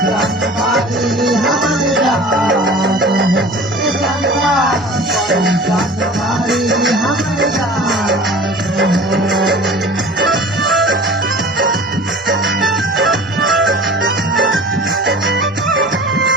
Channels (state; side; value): normal; both; correlation 0.41